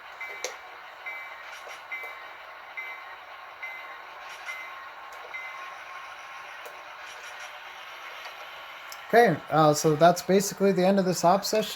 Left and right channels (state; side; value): identical; both; correlation 1.00